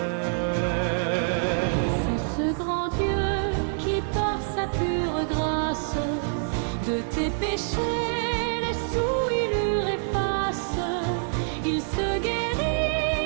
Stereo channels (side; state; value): left; silent; 61 dB below the other